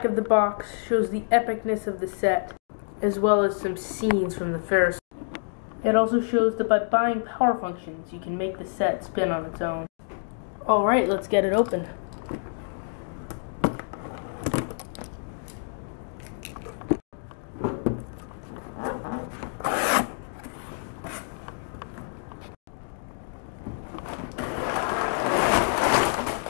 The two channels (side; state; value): right; silent; digital silence